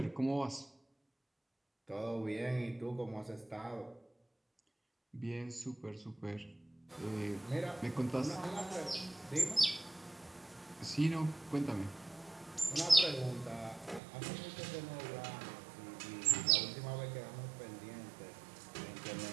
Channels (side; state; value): left; drops out; at 14.0 s